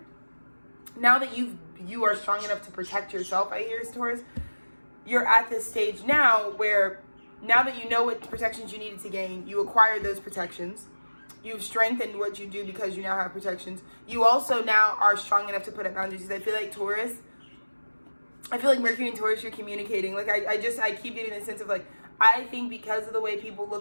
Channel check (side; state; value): both; inverted; correlation -1.00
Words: Now that you are strong enough to protect yourself, I hear, Taurus, you're at this stage now where now that you know what protections you needed to gain, you acquired those protections. You've strengthened what you do because you now have protections. You also now are strong enough to put up boundaries. I feel like Taurus, I feel like Mercury and Taurus, you're communicating. Like I keep getting the sense of like, I think because of the way people